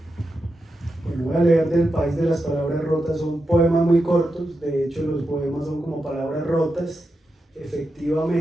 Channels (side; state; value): both; normal; correlation 0.88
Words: Bueno, voy a leer del País de las Palabras Rotas. Son poemas muy cortos, de hecho los poemas son como palabras rotas,